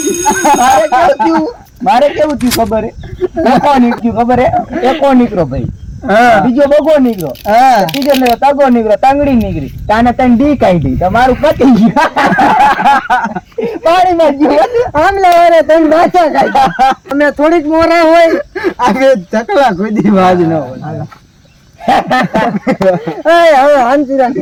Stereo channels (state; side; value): identical; both; correlation 1.00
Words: મારે કેવું થયું ખબર હે? એકો નીકળ્યું ખબર હે? એકો નીકળો ભાઈ. બીજો બગો નીકળો. ત્રીજો ને તગો નીકળો, તાંગડી નીકળી. તાને તને ડી કાઢી. તમારું પતી ગયું. પાણીમાં ગયું. આમલા વારે તને બાચા કાઢ્યા. અમે થોડીક મોરા હોય. આગળ ચકલા ખુદી વાજ ન હોય. એ હવે હાંચીરા